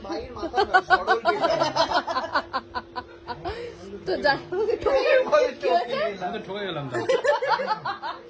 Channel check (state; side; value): identical; both; correlation 1.00